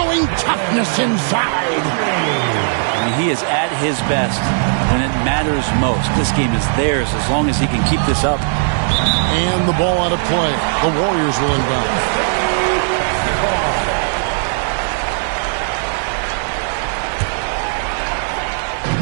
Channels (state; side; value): silent; left; digital silence